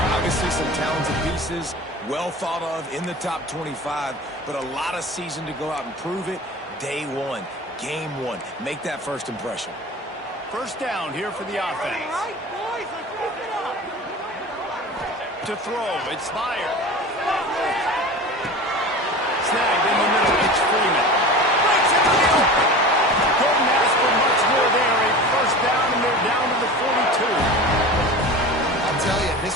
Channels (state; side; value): normal; both; correlation 0.34